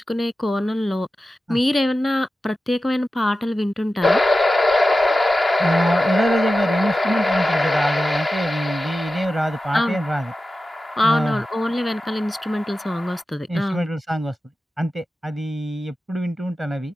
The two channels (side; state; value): both; normal; correlation 0.93